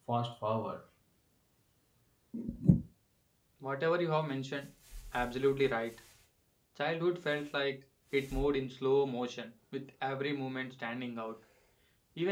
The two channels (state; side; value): identical; both; correlation 1.00